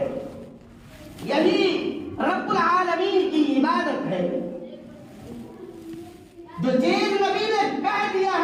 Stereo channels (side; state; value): both; identical; correlation 1.00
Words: यही रब्बुल आलमीन की इबादत है। जो चीज नबी ने कह दिया